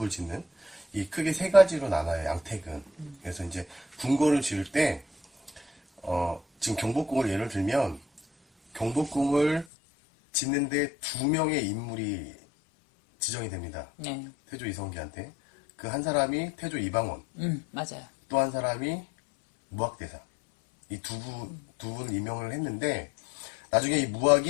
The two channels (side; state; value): right; drops out; at 9.7 s